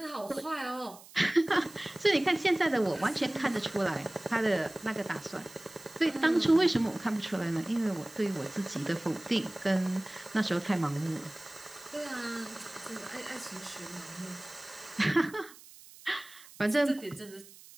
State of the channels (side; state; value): right; noise; hiss, 20 dB below the sound